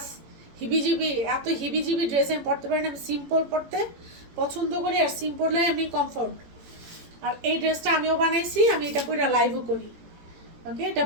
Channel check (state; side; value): late; left; 18 ms